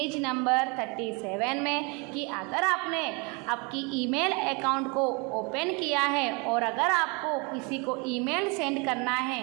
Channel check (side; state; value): left; quieter; 30.3 dB